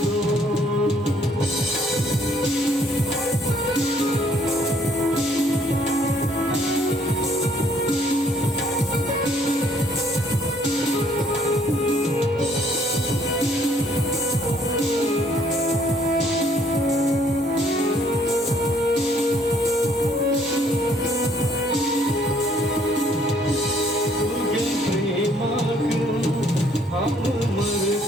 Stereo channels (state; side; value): normal; both; correlation 0.64